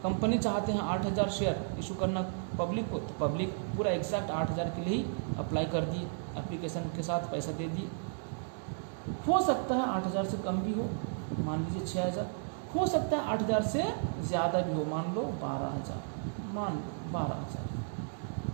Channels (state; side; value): silent; left; digital silence